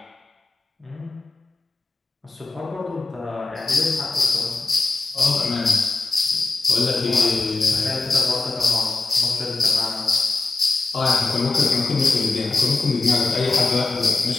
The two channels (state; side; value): quieter; right; 3.7 dB